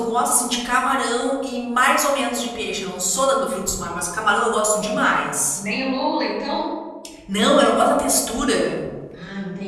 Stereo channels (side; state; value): both; identical; correlation 1.00